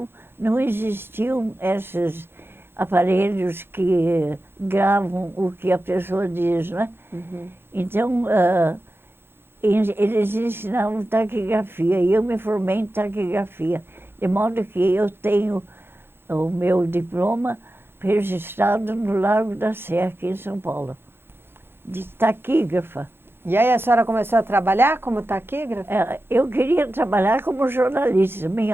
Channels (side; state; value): left; late; 0.11 ms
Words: não existiam esses aparelhos que gravam o que a pessoa diz, né? Então, eles ensinavam taquigrafia e eu me formei em taquigrafia, de modo que eu tenho o meu diploma registrado no Largo da Sé, aqui em São Paulo, de taquígrafa. E aí a senhora começou a trabalhar como taquígrafa? Eu queria trabalhar como jornalista.